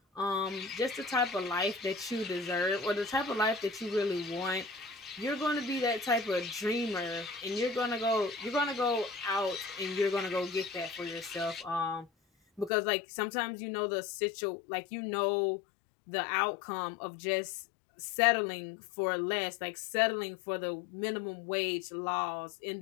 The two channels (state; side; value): drops out; right; at 12.7 s